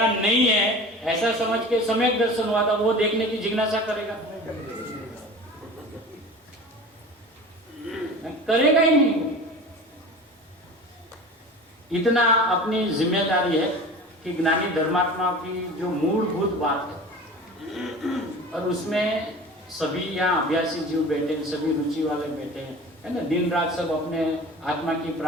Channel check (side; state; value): both; normal; correlation 0.37